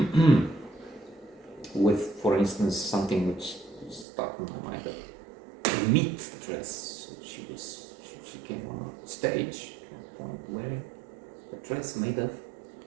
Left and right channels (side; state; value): left; drops out; at 4.0 s